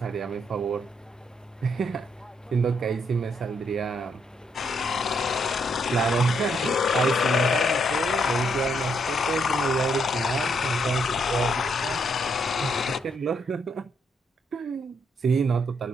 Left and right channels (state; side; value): normal; both; correlation 0.75